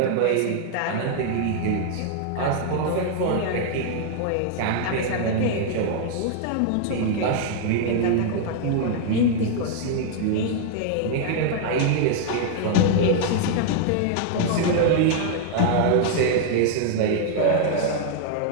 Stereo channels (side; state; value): both; different; correlation 0.00